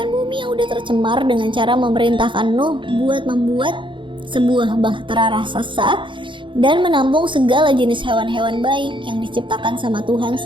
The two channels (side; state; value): left; late; 0.24 ms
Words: bumi yang udah tercemar dengan cara memerintahkan Nuh buat membuat sebuah bahtera raksasa dan menampung segala jenis hewan-hewan baik yang diciptakan sama Tuhan